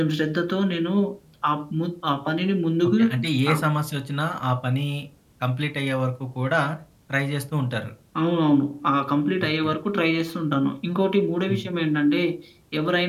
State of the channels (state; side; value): identical; both; correlation 1.00